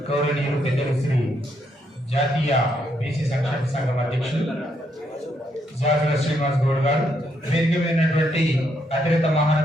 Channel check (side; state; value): both; normal; correlation 0.75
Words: గౌరవనీయులు పెద్దలు శ్రీ జాతీయ బీసీ సంక్షేమ సంఘం అధ్యక్షులు జాజుల శ్రీనివాస్ గౌడ్ గారు, వేదిక మీదటువంటి అతిరత